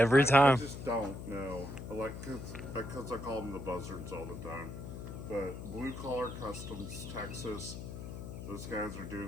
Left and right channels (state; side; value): noise; left; hum, 9 dB below the sound